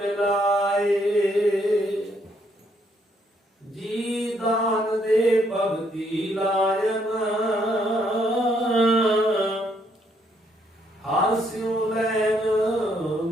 ਜੀ ਦਾਨ ਦੇ ਭਗਤੀ ਲਾਇਨ, ਹਰ ਸਿਉ ਲੈਨ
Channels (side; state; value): both; normal; correlation 0.71